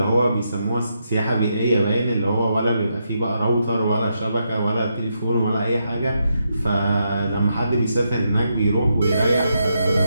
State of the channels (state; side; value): inverted; both; correlation -0.82